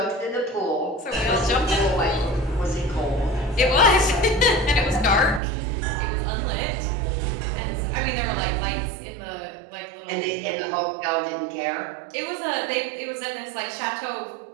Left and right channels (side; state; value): left; drops out; at 5.4 s